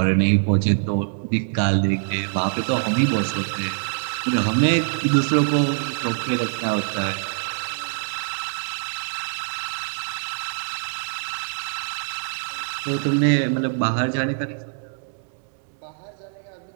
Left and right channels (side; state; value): left; silent; 63 dB below the other